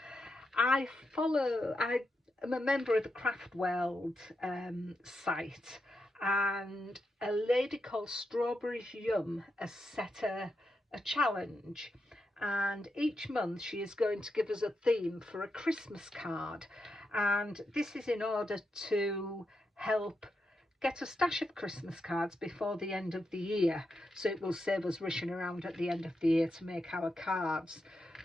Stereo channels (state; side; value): normal; both; correlation 0.85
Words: I am a member of the Craft World site, and a lady called Strawberries Yum has set a challenge, and each month she is going to give us a theme for a Christmas card, and this is in order to help get a stash of Christmas cards before the end of the year, so it will save us rushing around at the end of the year to make our cards.